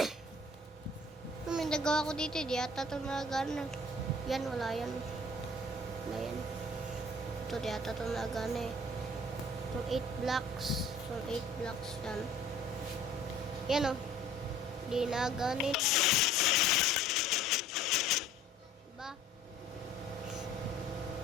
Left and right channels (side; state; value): both; normal; correlation 0.52